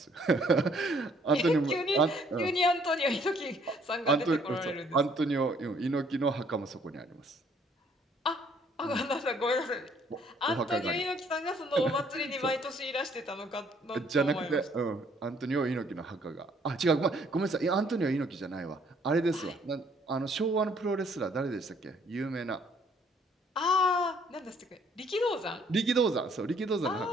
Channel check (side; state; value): both; normal; correlation 0.63